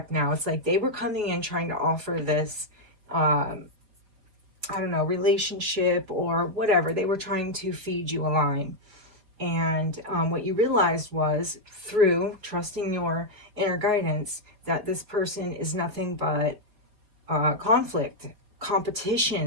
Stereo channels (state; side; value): late; left; 4.6 ms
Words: now. It's like they were coming in trying to offer this, I don't know, relationship or whatever. They were trying to feed you a line. And what you realized was through trusting your inner guidance that this person is nothing but conflict,